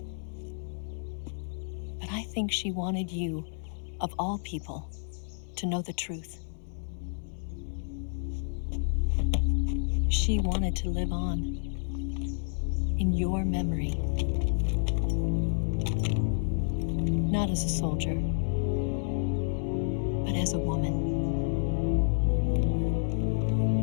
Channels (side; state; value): right; silent; digital silence